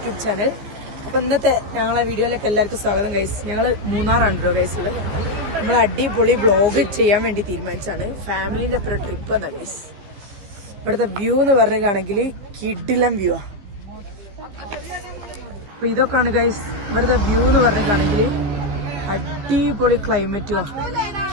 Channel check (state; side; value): late; left; 15 ms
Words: channel. അപ്പോൾ ഇന്നത്തെ ഞങ്ങളെ വീഡിയോയിലേക്ക് എല്ലാവർക്കും സ്വാഗതം ഗൈസ്. ഞങ്ങൾ മൂന്നാറാണ് കേട്ടോ ഗൈസുള്ളത്. നമ്മൾ അടിപൊളി വ്ളോഗ് ചെയ്യാൻ വേണ്ടി തീരുമാനിച്ചാണ്. ഫാമിലിൻ്റെ അപ്പുറം ട്രിപ്പ് എന്നാ ഗൈസ്. ഇവിടുത്തെ വ്യൂ എന്ന് പറഞ്ഞിട്ടാണെങ്കിൽ കിഡിലം വ്യൂ ആ. അപ്പോൾ ഇതൊക്കെയാണ് ഗൈസ് ഇവിടുത്തെ വ്യൂ എന്ന് പറഞ്ഞിട്ടാണെങ്കിൽ അടിപൊളി ക്ലൈമറ്റും.